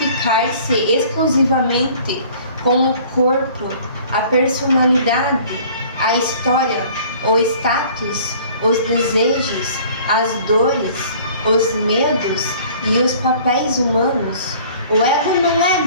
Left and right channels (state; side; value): inverted; both; correlation -0.51